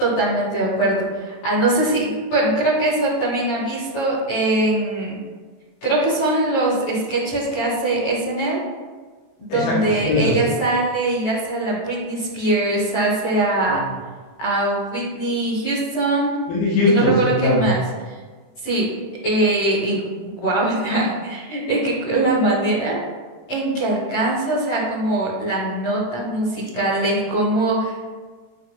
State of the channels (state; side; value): late; right; 18 ms